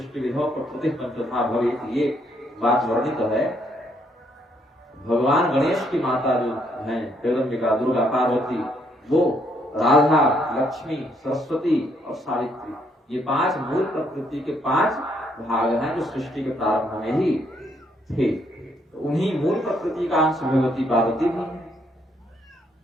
विधो प्रकृति पंचधा भवेत, ये बात वर्णित है। भगवान गणेश की माता जो है जगदम्बिका दुर्गा पार्वती, वो राधा लक्ष्मी सरस्वती और सावित्री, ये 5 मूल प्रकृति के 5 भाग हैं जो सृष्टि के प्रारंभ में ही थे। तो उन्हीं मूल प्रकृति का अंश भगवती पार्वती भी है।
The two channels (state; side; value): normal; both; correlation 0.71